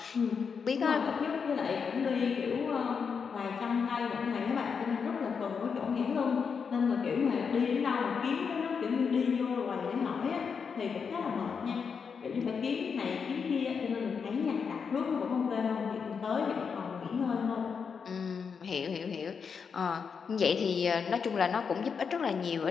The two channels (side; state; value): right; quieter; 6.1 dB